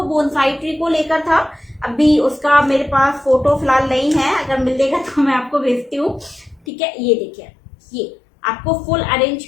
बोनसाई ट्री को लेकर था। अभी उसका मेरे पास फोटो फिलहाल नहीं है, अगर मिलेगा तो मैं आपको भेजती हूँ, ठीक है। ये देखिए, ये आपको फुल अरेंज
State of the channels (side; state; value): right; drops out; at 6.6 s